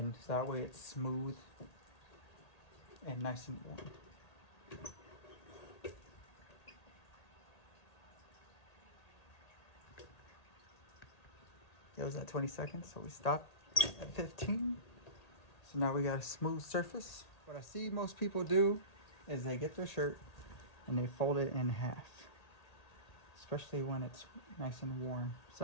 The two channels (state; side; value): late; right; 1.8 ms